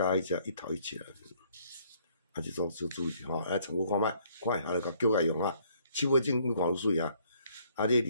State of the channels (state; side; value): inverted; both; correlation -0.64